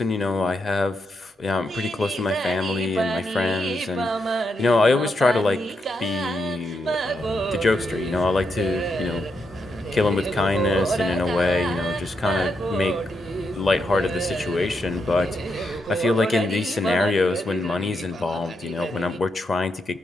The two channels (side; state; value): both; normal; correlation 0.82